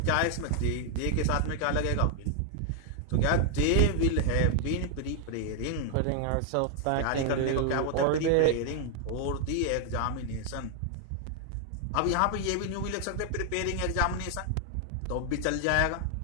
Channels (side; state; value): both; different; correlation 0.00